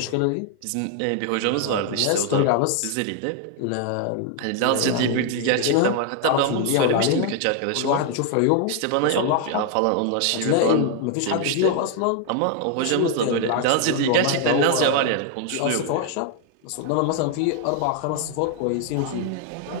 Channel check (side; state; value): both; different; correlation 0.00